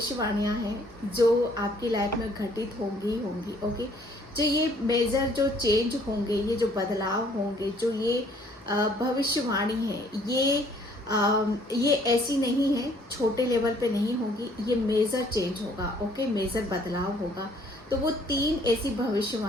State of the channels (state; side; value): normal; both; correlation 0.61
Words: हैं जो आपकी लाइफ में घटित होंगी। ओके, जो ये मेजर जो चेंज होंगे, ये जो बदलाव होंगे, जो ये भविष्यवाणी है, ये ऐसी नहीं है, छोटे लेवल पे नहीं होगी, ये मेजर चेंज होगा। ओके, मेजर बदलाव होगा। तो वो 3 ऐसी